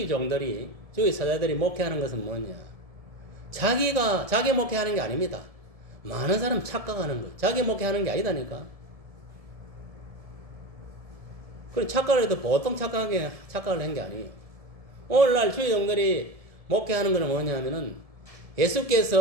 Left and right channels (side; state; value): left; late; 1.7 ms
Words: 종들이, 주의 사자들이 목회하는 것은 뭐냐? 자기 목회하는 게 아닙니다. 많은 사람 착각하는 거예요. 자기 목회하는 게 아니다니까. 그리고 착각을 해도 보통 착각을 한 게 아니에요. 오늘날 주의 종들이 목회하는 것은 뭐냐 하면은